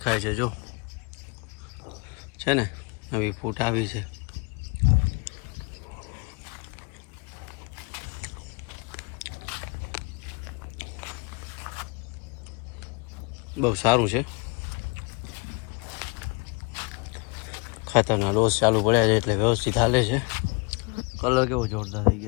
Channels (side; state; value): right; quieter; 31.9 dB